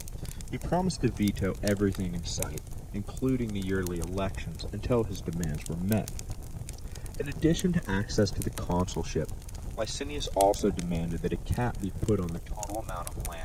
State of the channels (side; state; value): both; identical; correlation 1.00